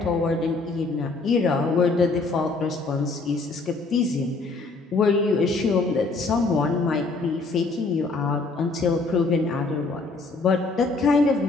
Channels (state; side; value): quieter; right; 3.7 dB